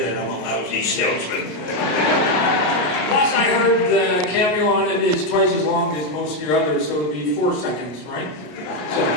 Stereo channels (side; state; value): right; late; 33 ms